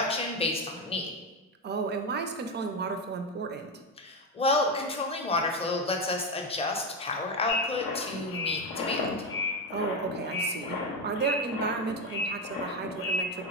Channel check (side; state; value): both; normal; correlation 0.11